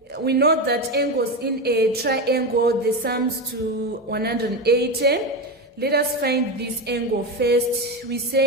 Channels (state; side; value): normal; both; correlation 0.17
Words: we know that angles in a triangle, the sums to 180. Let us find this angle first. We